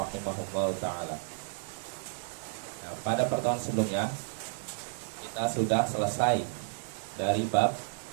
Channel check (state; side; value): silent; left; digital silence